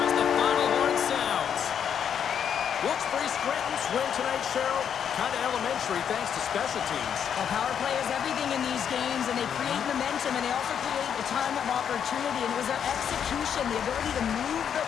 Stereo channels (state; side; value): quieter; right; 8.2 dB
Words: as the final horn sounds. Wilkes-Barre Scranton's win tonight, Cheryl. Kind of elementary thanks to special teams. Well, power play is everything in these games, and they create momentum, and they also create a ton of opportunity, and it was their execution, the ability to move the